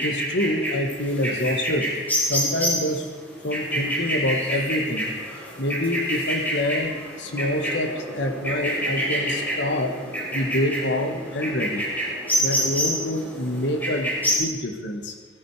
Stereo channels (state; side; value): normal; both; correlation 0.22